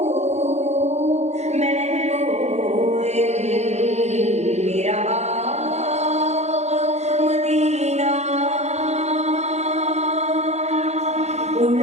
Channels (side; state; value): left; late; 0.32 ms